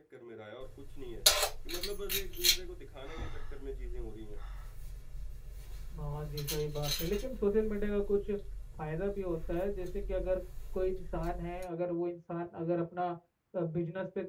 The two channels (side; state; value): both; identical; correlation 1.00